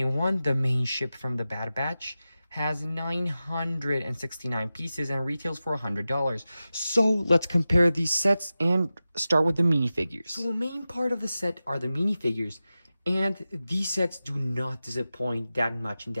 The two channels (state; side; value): inverted; both; correlation -0.94